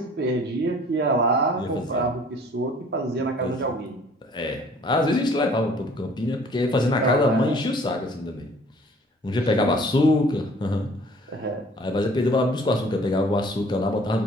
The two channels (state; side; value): normal; both; correlation 0.54